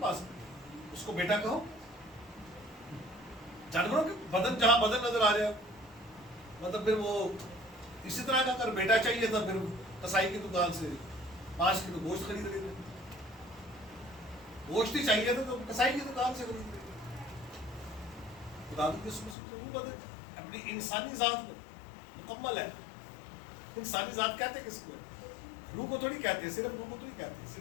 ہے، اس کو بیٹا کہو، جانوروں کے بدن جہاں بدن نظر آ جائے مطلب پھر وہ اسی طرح کا اگر بیٹا چاہیے تھا پھر کسائی کی دکان سے 5 کلو گوشت خرید لیتے، گوشت ہی چاہیے تھا تو کسائی کی دکان سے خرید لیتے۔ خدا کی قسم سے روح بدن اپنی انسانی ذات میں مکمل ہے۔ انسانی ذات کہتے کس کو؟ روح کو تھوڑی کہتے ہیں، صرف روح کو تو نہیں کہتے،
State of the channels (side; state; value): right; drops out; at 19.4 s